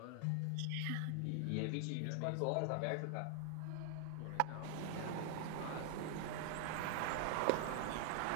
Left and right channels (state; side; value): different; both; correlation 0.00